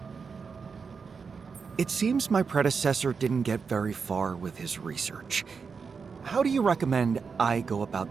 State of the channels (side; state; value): left; quieter; 5.5 dB